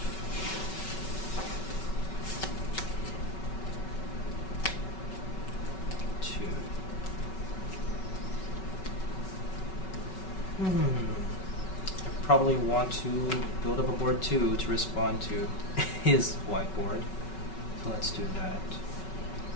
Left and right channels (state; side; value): late; right; 5.3 ms